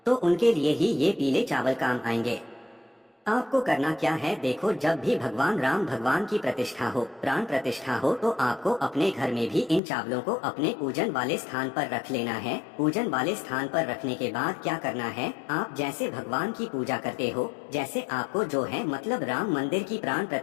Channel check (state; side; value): drops out; right; at 9.8 s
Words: तो उनके लिए ही ये पीले चावल काम आएंगे। आपको करना क्या है, देखो जब भी भगवान राम भगवान की प्रतिष्ठा हो, प्राण प्रतिष्ठा हो, तो आपको अपने घर में भी इन चावलों को अपने पूजन वाले स्थान पर रख लेना है। पूजन वाले स्थान पर रखने के बाद क्या करना है, आप जैसे भगवान की पूजा करते हो, जैसे आपको जो है मतलब राम मंदिर की प्राण